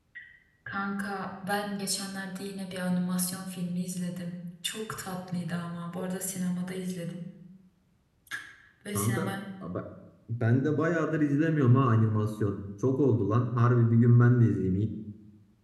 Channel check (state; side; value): identical; both; correlation 1.00